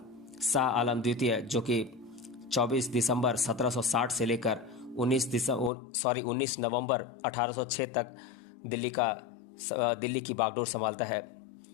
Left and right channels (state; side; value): drops out; right; at 5.7 s